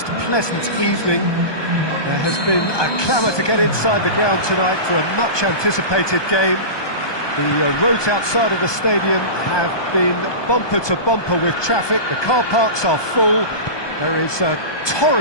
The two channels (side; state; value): right; late; 1.2 ms